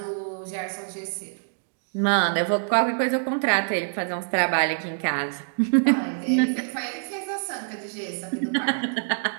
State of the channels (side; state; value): left; silent; digital silence